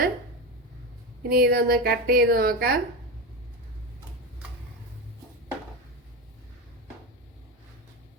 ഇനി ഇതൊന്ന് കട്ട് ചെയ്ത് നോക്കാം.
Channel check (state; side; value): normal; both; correlation 0.18